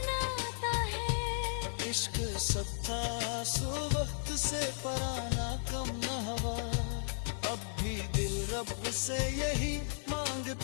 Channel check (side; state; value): right; silent; digital silence